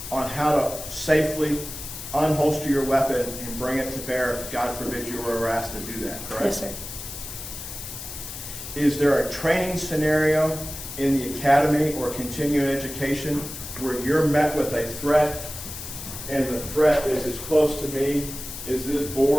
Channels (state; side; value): noise; left; hiss, 10 dB below the sound